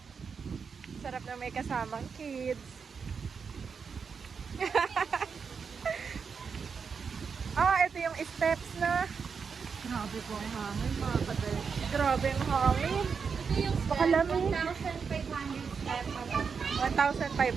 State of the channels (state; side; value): quieter; left; 5.8 dB